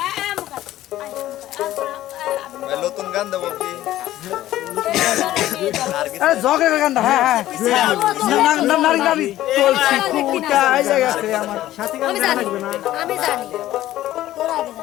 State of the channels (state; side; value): quieter; right; 14.3 dB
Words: নতুন গান দেবো কি আরে ঝগড়া গান হ্যাঁ হ্যাঁ না নারী নারী চলছি কুটা আই জায়গাতে আমার সাথী গান লাগবে না আমি জানি তোরা আগে